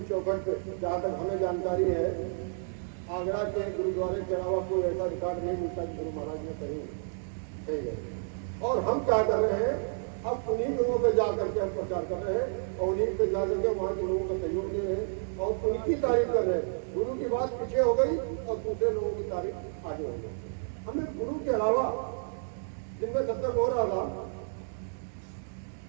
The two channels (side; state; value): left; silent; digital silence